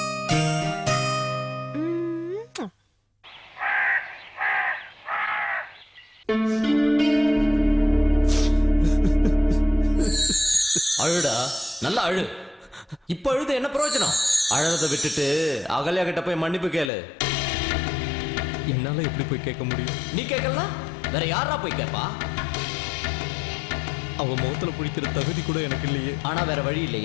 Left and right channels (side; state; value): right; drops out; at 16.9 s